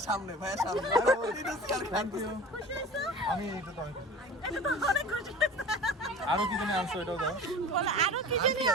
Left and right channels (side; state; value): both; normal; correlation 0.39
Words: সামনে খুশি হয়েছো? আমি এটা তো অনেক খুশি। এটা তো অনেক খুশি হয়েছে। আরো কি জানি আনছো, এটাও দাও। বলো, আরো কি জানি